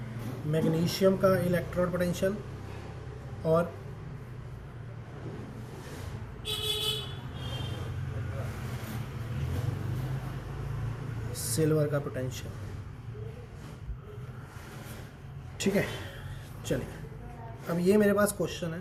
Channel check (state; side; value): identical; both; correlation 1.00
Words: मैग्नीशियम का इलेक्ट्रॉन पोटेंशियल और सिल्वर का पोटेंशियल, ठीक है। चलिए, अब ये मेरे पास क्वेश्चन